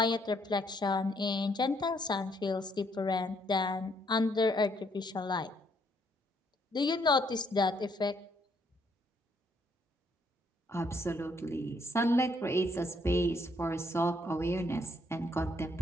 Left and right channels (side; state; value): both; normal; correlation 0.70